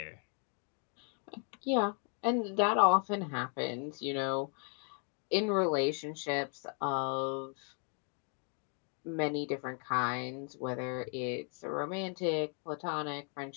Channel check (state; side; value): quieter; right; 38.0 dB